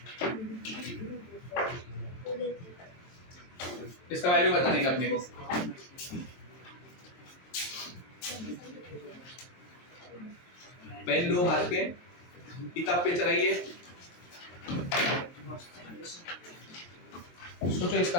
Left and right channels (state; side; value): late; right; 23 ms